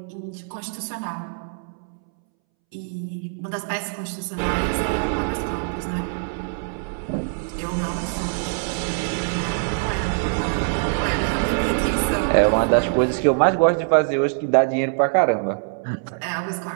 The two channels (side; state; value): left; silent; 63 dB below the other